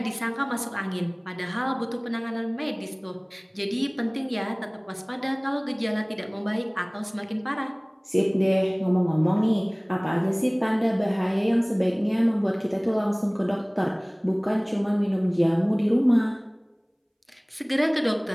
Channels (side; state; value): both; identical; correlation 1.00